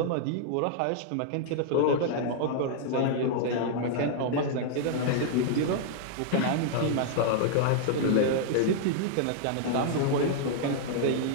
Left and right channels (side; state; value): both; different; correlation -0.01